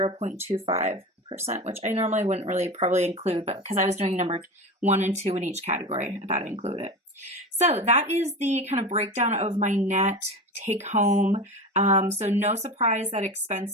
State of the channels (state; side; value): normal; both; correlation 0.28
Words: which I normally wouldn't really probably include, but because I was doing number 1 and 2 in each category, I thought I'd include it. So that is the kind of breakdown of my net take home. So no surprise that